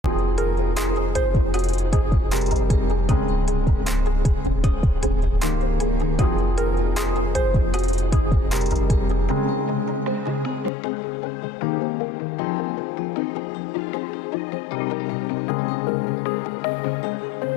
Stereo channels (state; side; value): drops out; right; at 10.7 s